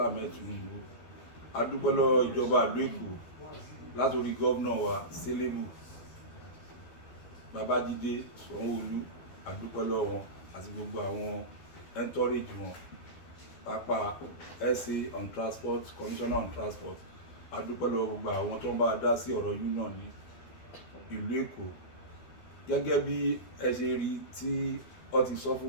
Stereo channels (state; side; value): late; right; 12 ms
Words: Ahmed Tinubu. A dúpẹ́ lọ́wọ́ ìjọba ìlú Èkó látòrí gómìnà wa Selebu Babájídé Sanwó-Olú. A dúpẹ́ lọ́wọ́ wọn àti gbogbo àwọn entourage wọn, pápá SA on transport, commissioner on transport. A dúpẹ́ lọ́wọ́ gbogbo àwọn tó ń bá dá sí ọ̀rọ̀ union ní ìlú Èkó. Gẹ́gẹ́ bí ẹ ṣe rí tí ó ti sọ